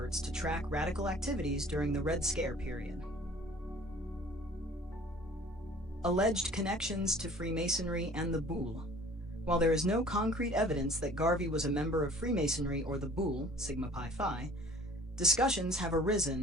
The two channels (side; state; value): both; normal; correlation 0.51